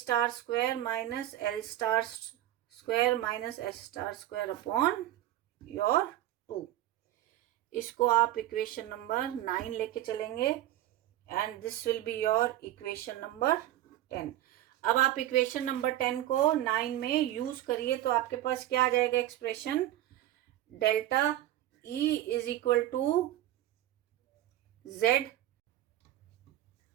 square minus L star square minus S star square upon your 2। इसको आप इक्वेशन नंबर 9 लेके चलेंगे and this will be your equation number 10। अब आप equation number 10 को 9 में use करिए तो आपके पास क्या आ जाएगा expression, delta E is equal to Z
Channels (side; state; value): left; quieter; 13.7 dB